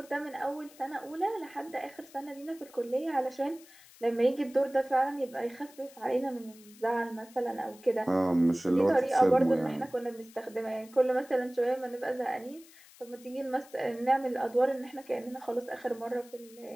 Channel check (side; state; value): left; noise; hiss, 23 dB below the sound